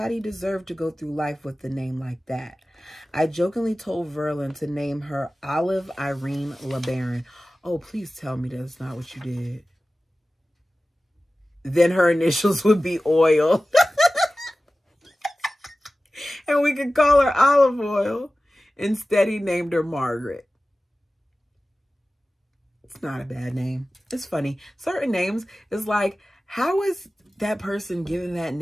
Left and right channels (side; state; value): both; normal; correlation 0.96